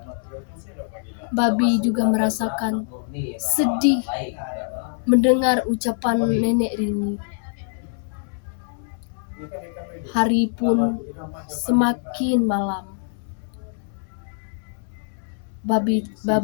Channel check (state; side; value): silent; right; 61 dB below the other